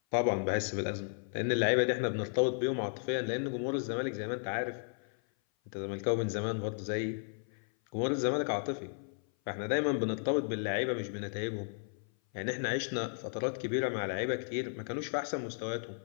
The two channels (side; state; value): right; silent; 55 dB below the other